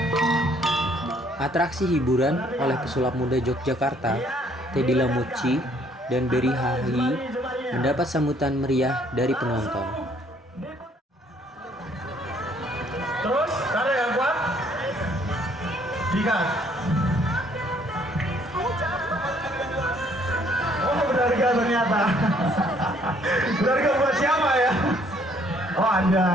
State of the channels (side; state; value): both; normal; correlation 0.63